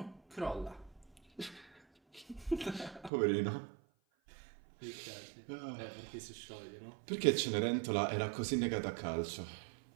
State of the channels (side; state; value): left; drops out; at 3.1 s